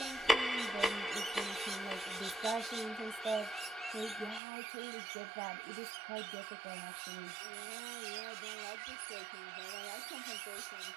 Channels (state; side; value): drops out; left; at 4.4 s